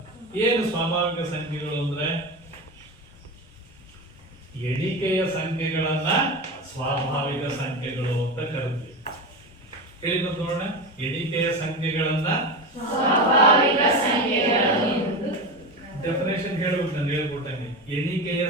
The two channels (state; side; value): normal; both; correlation 0.22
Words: ಏನು ಸ್ವಾಭಾವಿಕ ಸಂಖ್ಯೆಗಳು ಅಂದ್ರೆ? ಎಣಿಕೆಯ ಸಂಖ್ಯೆಗಳನ್ನ ಸ್ವಾಭಾವಿಕ ಸಂಖ್ಯೆಗಳು ಅಂತ ಕರಿತೀವಿ. ಹೇಳಿ ನೋಡೋಣ, ಎಣಿಕೆಯ ಸಂಖ್ಯೆಗಳನ್ನ ಸ್ವಾಭಾವಿಕ ಸಂಖ್ಯೆಗಳು. ಡೆಫಿನೇಷನ್ ಹೇಳ್ಬೇಕು, ನಾನು ಹೇಳ್ಕೊಟ್ಟಂಗೆ. ಎಣಿಕೆಯ